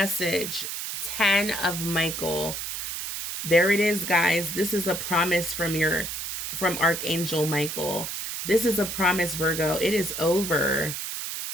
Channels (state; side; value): noise; right; hiss, 5 dB below the sound